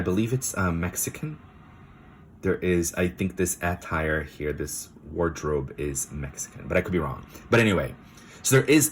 believe it's Mexican. There is, I think this attire here, this wardrobe is Mexican, but I could be wrong. But anyway, So there is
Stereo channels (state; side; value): identical; both; correlation 1.00